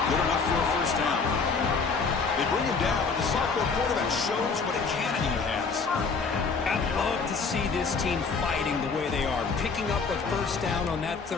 good enough for a 1st down. They bring him down, and the sophomore quarterback shows what a cannon he has. I'd love to see this team fighting the way they are. Picking up a 1st down on that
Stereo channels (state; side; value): quieter; right; 4.9 dB